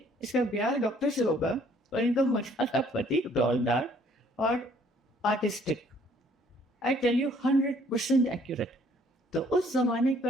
इसका ब्याह डॉक्टर से होगा और इनका मसाला पति डॉलदार और artistic. I tell you 100% accurate. तो उस जमाने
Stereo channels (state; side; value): normal; both; correlation 0.61